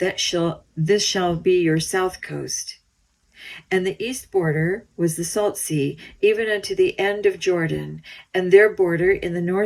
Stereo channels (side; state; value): both; identical; correlation 1.00